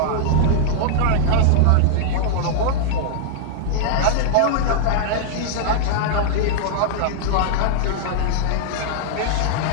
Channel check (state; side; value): different; both; correlation -0.01